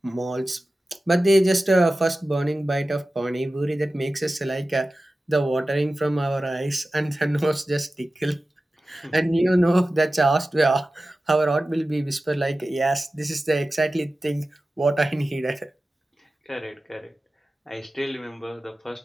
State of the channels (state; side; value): normal; both; correlation 0.95